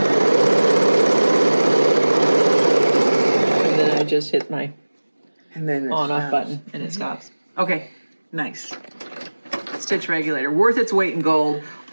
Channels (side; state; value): both; inverted; correlation -1.00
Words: And then I just hit my And then it on-off stops. button and it stops. Okay, Nice. stitch regulator, worth its weight in gold.